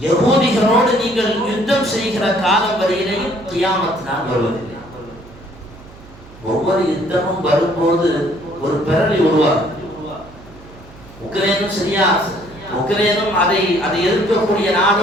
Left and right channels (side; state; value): right; noise; hum, 21 dB below the sound